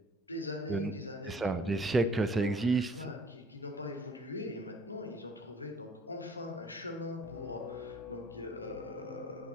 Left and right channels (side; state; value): both; normal; correlation 0.54